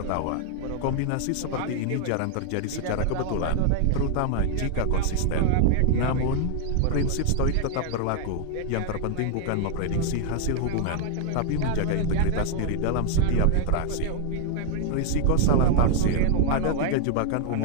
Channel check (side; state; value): both; different; correlation 0.00